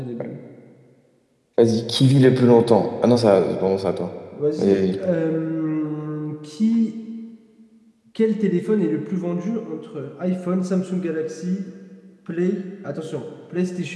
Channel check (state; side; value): identical; both; correlation 1.00